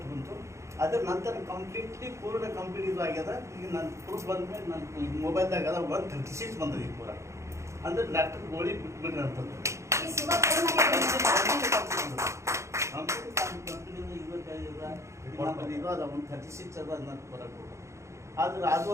ಬಂತು. ಅದರ ನಂತರ ಪೂರ್ಣ ಕಂಪ್ಲೀಟ್ ಇದು ಆಗ್ಯದ. ಈಗ ನಾನು ಪ್ರೂಫ್ ಬಂದ್ಮೇಲೆ ನನ್ನ ಮೊಬೈಲ್ದಾಗ 136 ಬಂದದ ಈಗ ಪೂರ. ಅಂದ್ರೆ ಡಾಕ್ಟರ್ ಗೋಳಿ ಬಿಟ್ಬಿಡ್ರಿ ಅಂತಂದು ಕಂಪ್ನಿಯಿಂದ 25 ಇದು ಅದ 136 ಅದ ನನ್ನ ಬರೋದು. ಆದ್ರೆ ಅದು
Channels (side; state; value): left; late; 0.14 ms